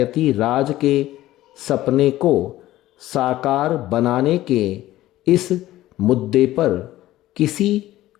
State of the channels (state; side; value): quieter; right; 15.3 dB